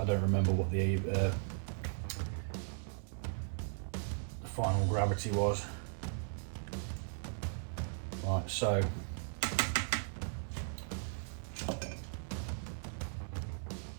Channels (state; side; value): silent; left; digital silence